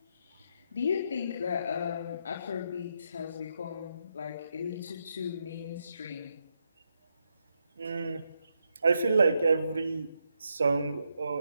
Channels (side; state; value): both; inverted; correlation -0.81